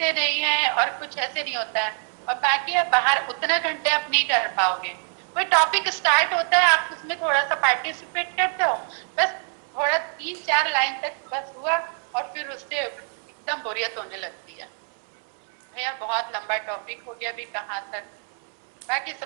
नहीं है और कुछ ऐसे नहीं होता है। और बाकी आप बाहर उतना घंटे आप नहीं कर पाओगे। कोई टॉपिक स्टार्ट होता है, आप उसमें थोड़ा सा पार्टिसिपेट करते हो, बस थोड़ा 3-4 लाइन तक बस हुआ और फिर उससे एकदम बोरियत होने लगती है। भैया बहुत लंबा टॉपिक हो गया, अभी कहाँ तक, बाकी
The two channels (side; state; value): left; silent; 56 dB below the other